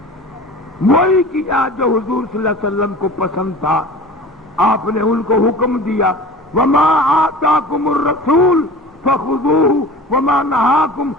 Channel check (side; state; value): both; normal; correlation 0.39